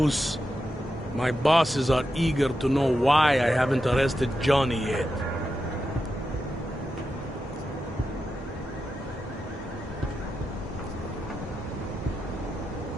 My bosses are eager to know why I haven't arrested Johnny yet.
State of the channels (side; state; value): both; normal; correlation 0.88